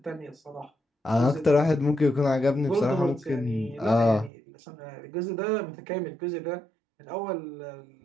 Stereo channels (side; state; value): left; drops out; at 4.3 s